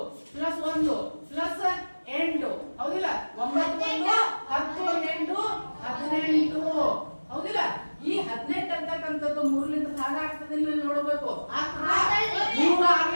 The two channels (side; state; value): both; inverted; correlation -1.00